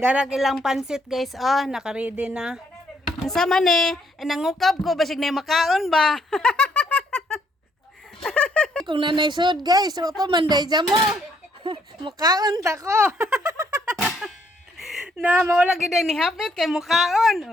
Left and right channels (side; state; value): both; normal; correlation 0.70